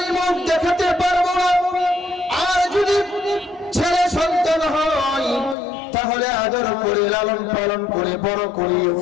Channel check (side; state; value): right; drops out; at 5.6 s